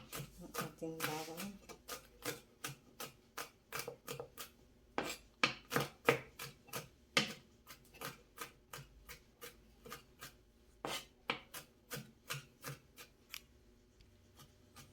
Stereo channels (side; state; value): both; identical; correlation 1.00